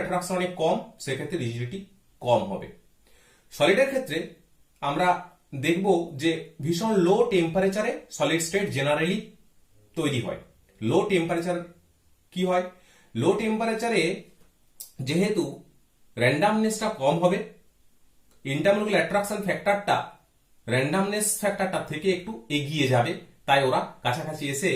অ্যাট্রাকশন অনেক কম সেক্ষেত্রে রিজিডিটি কম হবে। সলিডের ক্ষেত্রে আমরা দেখব যে ভীষণ লো টেম্পারেচারে সলিড স্টেট জেনারেলি তৈরি হয়। লো টেম্পারেচার কি হয়? লো টেম্পারেচারে যেহেতু র্যান্ডামনেসটা কম হবে, ইন্টারমলিকুলার অ্যাট্রাকশন ফ্যাক্টরটা র্যান্ডামনেস ফ্যাক্টরটা থেকে একটু এগিয়ে যাবে, তাই ওরা কাছাকাছি এসে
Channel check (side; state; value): both; identical; correlation 1.00